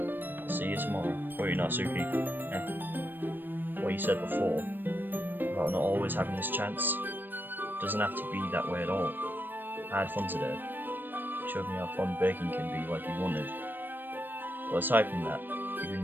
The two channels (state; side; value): late; left; 0.093 ms